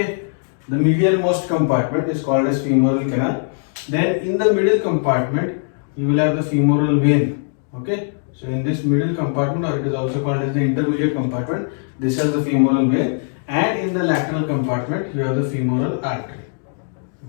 The medial most compartment is called as femoral canal. Then in the middle compartment, you will have the femoral vein. Okay. So in this middle compartment, or it is also called as the intermediate compartment, this has the femoral vein, and in the lateral compartment, you have the femoral artery.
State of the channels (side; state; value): right; silent; digital silence